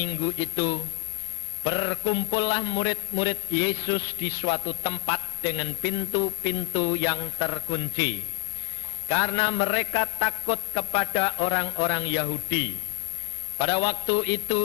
itu, berkumpullah murid-murid Yesus di suatu tempat dengan pintu-pintu yang terkunci, karena mereka takut kepada orang-orang Yahudi. Pada waktu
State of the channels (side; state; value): right; silent; digital silence